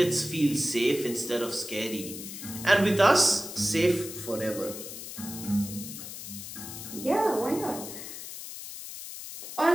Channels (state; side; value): noise; left; hiss, 10 dB below the sound